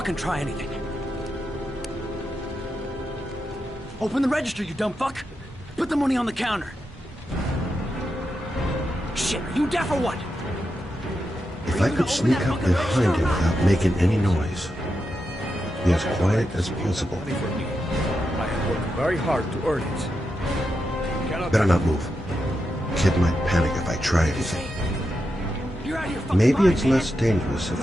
try anything. Open the register, you dumb fuck. Put the money on the counter. Shit, are you deaf or what? If I could sneak up behind him without making any noise, Be as quiet as possible. Money for me. I have worked very hard to earn it. You cannot Better not move. Kid might panic if I try anything. You're out of your fucking Maybe mind, it's man. less dangerous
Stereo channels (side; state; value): both; normal; correlation 0.87